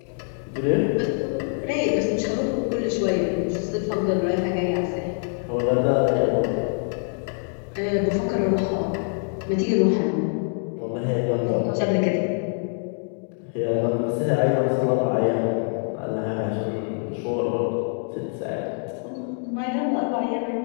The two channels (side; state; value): right; silent; 58 dB below the other